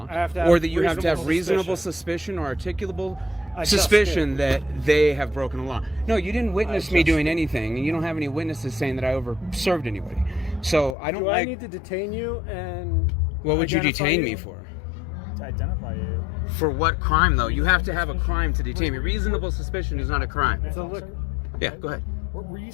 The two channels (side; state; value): right; drops out; at 11.0 s